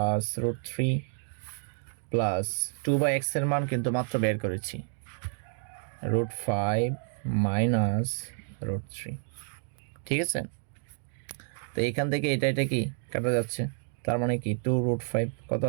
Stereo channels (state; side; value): silent; left; 58 dB below the other